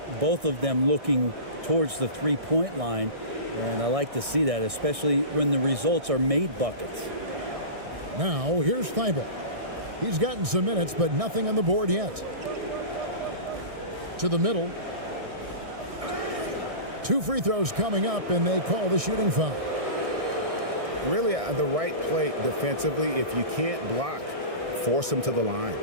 both of them looking towards the three-point line, and I like to see that, especially when the results are made buckets. Now, here's Thibault. He's gotten some minutes, but nothing on the board yet. To the middle. 2 free throws coming up, and they call the shooting foul. Really, the right play defensively. If you can't block, force them to the line.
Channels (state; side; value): late; left; 1.6 ms